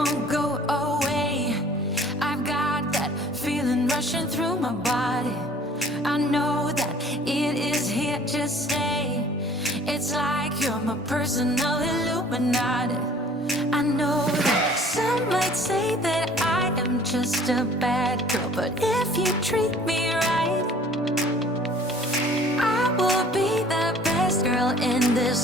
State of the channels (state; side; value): normal; both; correlation 0.52